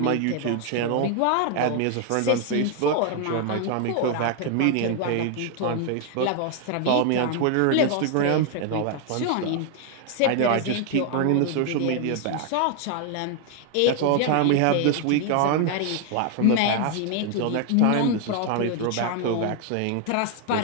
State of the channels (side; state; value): both; different; correlation 0.00